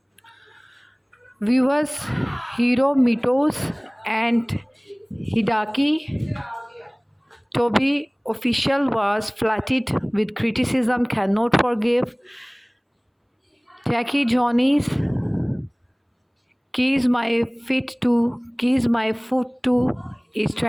Viewers, hero Mitos and Hidaki TOBE official was flooded with criticism, cannot forgive. Jackie Johnny's Kis-My-Ft2 is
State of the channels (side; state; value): both; identical; correlation 1.00